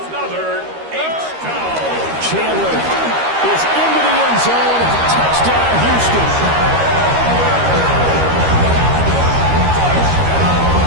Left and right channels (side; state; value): left; late; 13 ms